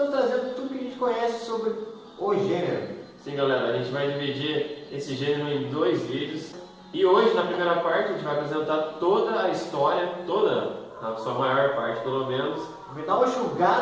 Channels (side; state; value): both; identical; correlation 1.00